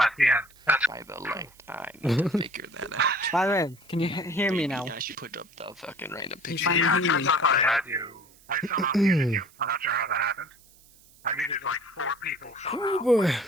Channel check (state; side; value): noise; right; hiss, 27 dB below the sound